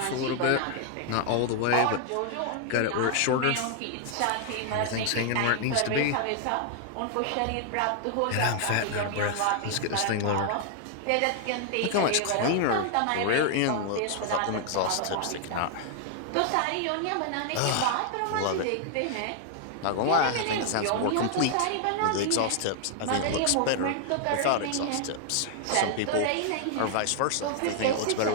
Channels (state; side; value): different; both; correlation 0.00